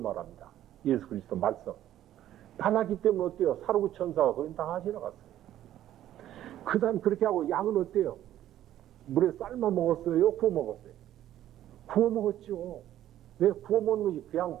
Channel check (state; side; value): quieter; left; 12.5 dB